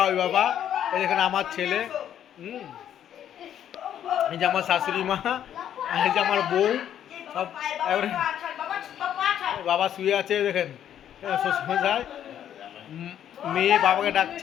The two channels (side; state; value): right; quieter; 10.2 dB